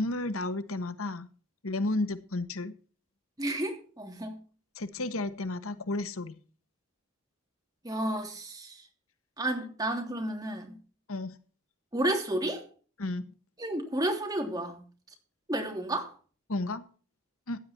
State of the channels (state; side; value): normal; both; correlation 0.50